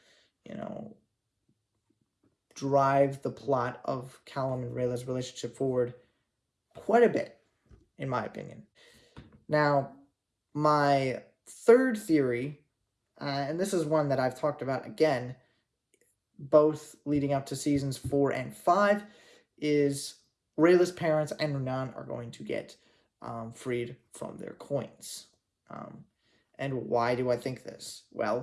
drive the plot of Callum and Rayla's relationship forward quite a bit, in my opinion. Now, my third theory, and this is one that I've talked about again, both leading up to seasons 4 and 5, is Rayla's parents and Renan are going to get freed from their coins. And why do I think this?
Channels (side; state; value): both; identical; correlation 1.00